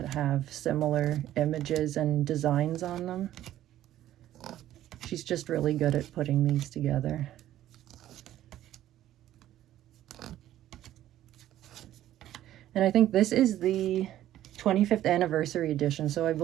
have similar images and designs on them. She's just really good at putting these together. And I think this is the 25th anniversary edition, so I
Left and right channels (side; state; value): left; quieter; 12.9 dB